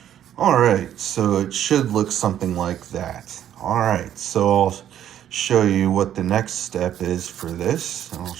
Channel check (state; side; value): quieter; left; 10.8 dB